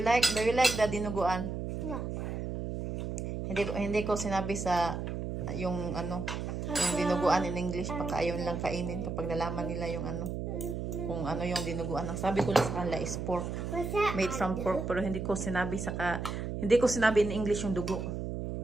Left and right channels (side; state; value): right; noise; hum, 4 dB below the sound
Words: the dinuguan? No. Hindi ko sinabi sa yung dinuguan in English, pagka ayaw nilang kainin kapag nalaman nila yung kung yung dinuguan. Ang sabi ko lang sa kanila is pork, made from pork, pero hindi ko sinabi in English yung dugo.